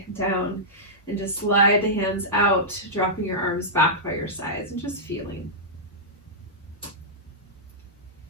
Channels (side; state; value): both; normal; correlation -0.13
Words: down and just slide the hands out, dropping your arms back by your sides and just feeling.